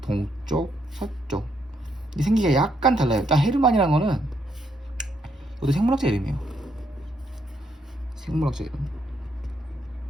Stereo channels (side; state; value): both; normal; correlation 0.75